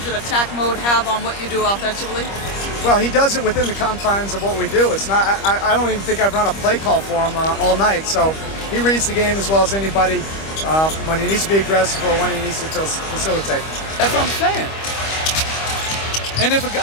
in attack mode have on what you do offensively? Well, he does it within the confines of what we do. It's not. I don't even think I've run a play call for him all night. So he reads the game as well as anybody when he needs to be aggressive or when he needs to facilitate. That's what I'm saying. And if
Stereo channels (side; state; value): right; late; 25 ms